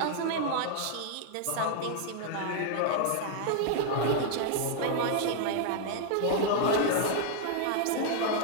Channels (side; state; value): both; different; correlation 0.00